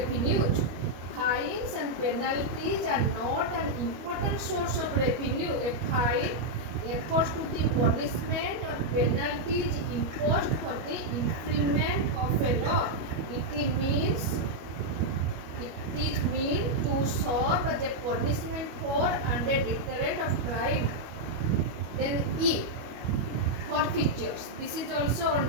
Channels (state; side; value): late; left; 25 ms